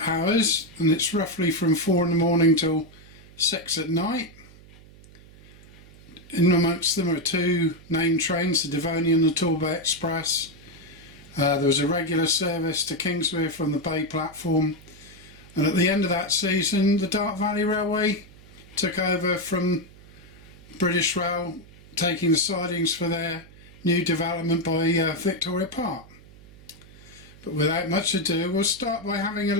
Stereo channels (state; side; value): noise; right; hum, 22 dB below the sound